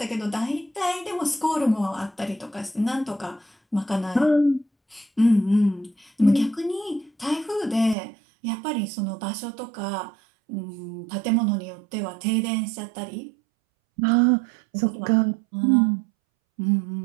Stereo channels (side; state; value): left; drops out; at 8.0 s